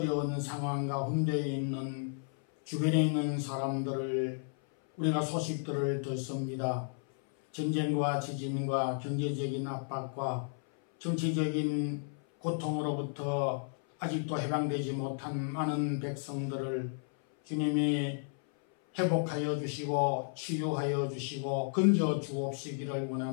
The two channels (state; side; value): silent; right; 56 dB below the other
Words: 상황 가운데 있는 주변에 있는 사람들을 우리가 소식들을 듣습니다. 전쟁과 지진과 경제적인 압박과 정치적인 고통으로부터 아직도 해방되지 못한 많은 백성들을 주님이 회복하여 주시고 치유하여 주시고 건져 주옵시기를